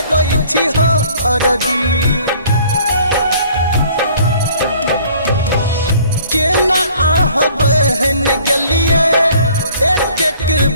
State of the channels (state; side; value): inverted; both; correlation -0.55